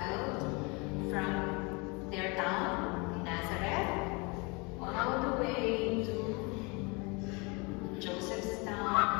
from their town, Nazareth, all the way to Joseph's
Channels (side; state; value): right; quieter; 29.1 dB